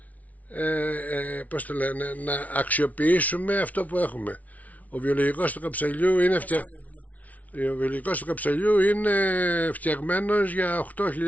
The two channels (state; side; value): late; right; 0.071 ms